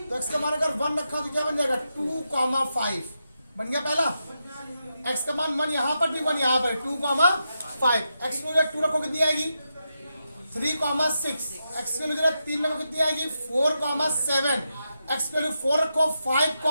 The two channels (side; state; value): both; inverted; correlation -0.86